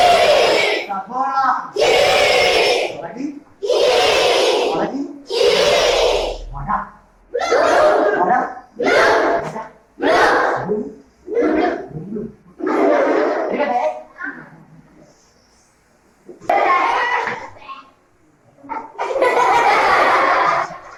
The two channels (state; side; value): identical; both; correlation 1.00